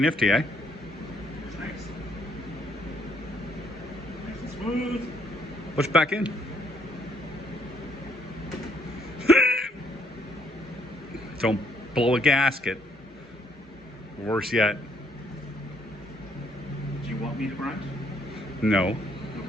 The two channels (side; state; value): both; normal; correlation 0.69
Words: eh? It's nice. Nice and smooth. Push back in. Don't blow a gasket. Worse yet. Do you want me to grunt? No.